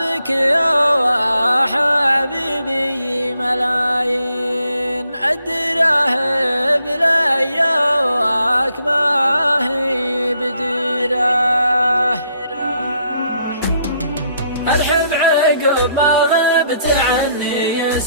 يا حبيبي ملايين، الدراهم لياك ما هي بديرة. أرحب عقب ما غبت عني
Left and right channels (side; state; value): both; inverted; correlation -0.72